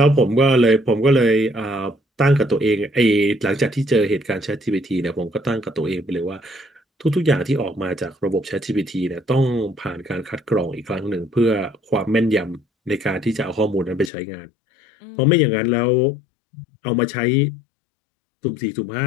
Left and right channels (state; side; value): drops out; right; at 14.1 s